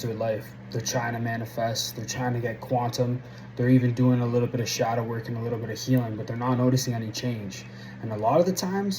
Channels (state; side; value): identical; both; correlation 1.00